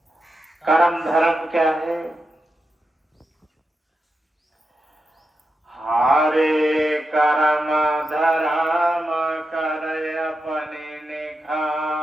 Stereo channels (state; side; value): normal; both; correlation 0.88